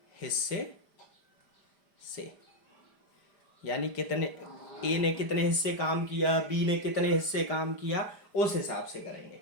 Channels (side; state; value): right; late; 5.0 ms